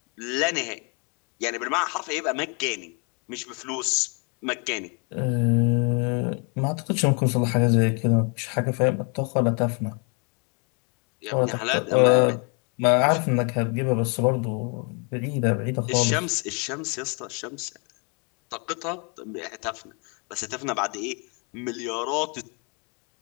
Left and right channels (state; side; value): quieter; right; 35.6 dB